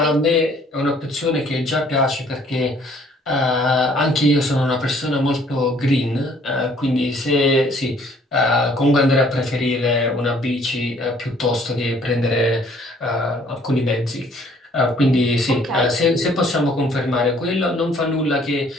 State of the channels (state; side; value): normal; both; correlation 0.60